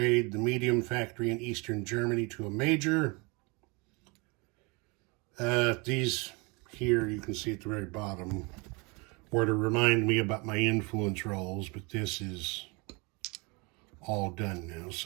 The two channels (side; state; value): left; quieter; 29.0 dB